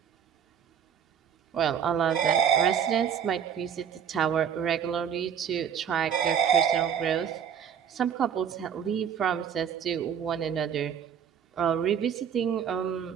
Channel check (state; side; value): quieter; left; 8.2 dB